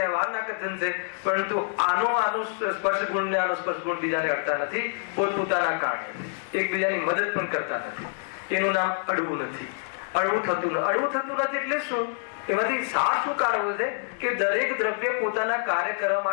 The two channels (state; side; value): silent; right; 61 dB below the other